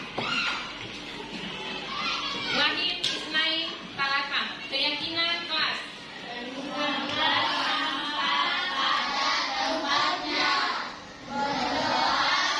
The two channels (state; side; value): identical; both; correlation 1.00